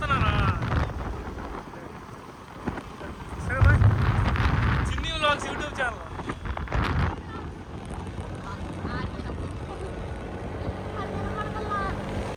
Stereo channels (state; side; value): identical; both; correlation 1.00